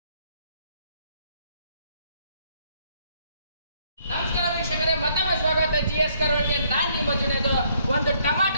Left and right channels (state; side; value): inverted; both; correlation -0.67